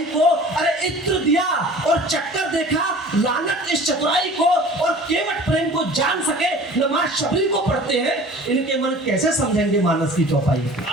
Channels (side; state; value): both; normal; correlation 0.44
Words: को। अरे इत्र दिया और चक्कर देखा, लानत इस चतुराई को, और केवट प्रेम को जान सके नमाज शबरी को पढ़ते हैं, इनके मन कैसे समझेंगे मानस की चौपाई को।